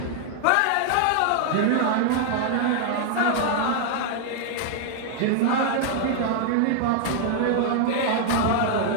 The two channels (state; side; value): different; both; correlation 0.00